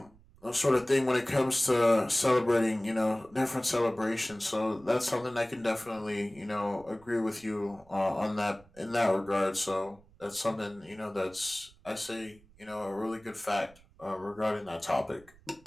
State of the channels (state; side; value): noise; right; rumble, 27 dB below the sound